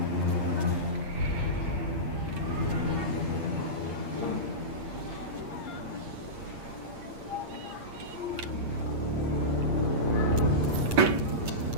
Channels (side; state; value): left; late; 8.6 ms